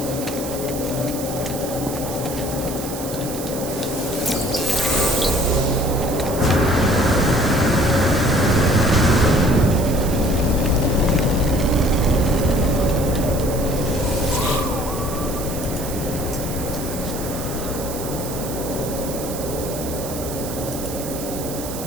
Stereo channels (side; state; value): right; noise; hiss, 10 dB below the sound